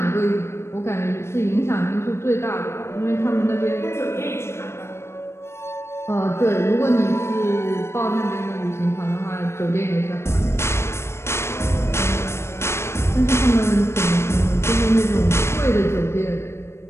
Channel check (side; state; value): right; late; 0.13 ms